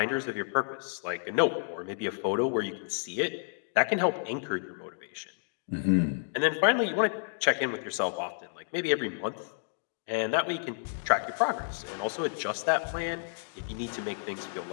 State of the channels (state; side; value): silent; right; digital silence